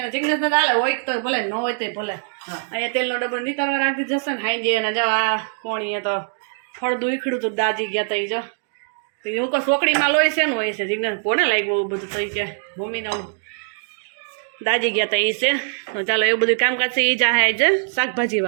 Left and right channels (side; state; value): left; silent; digital silence